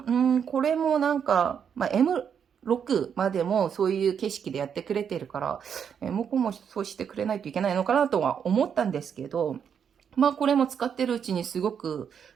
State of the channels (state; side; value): quieter; left; 7.6 dB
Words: これもなんか、M6 までもそういう景色でやってくれてるから、向こうもそうしてくれないといけないのかなとは思ったんですけど、これも使ってるうちにすごく